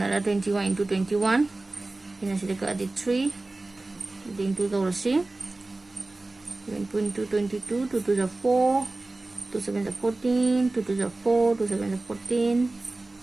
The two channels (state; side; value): quieter; left; 3.0 dB